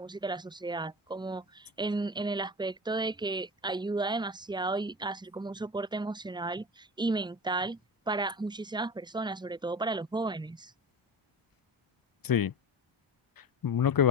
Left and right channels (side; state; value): both; normal; correlation 0.30